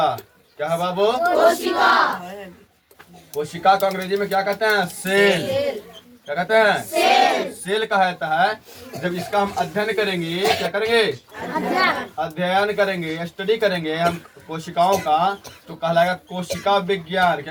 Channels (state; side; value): identical; both; correlation 1.00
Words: क्या है बाबू? कोशिका को अंग्रेजी में क्या कहते हैं? सेल। क्या कहते हैं? सेल कहा जाता है जब इसका हम अध्ययन करेंगे। क्या करेंगे? अध्ययन करेंगे, स्टडी करेंगे हम कोशिकाओं का, तो कहलाएगा कोशिका विज्ञान।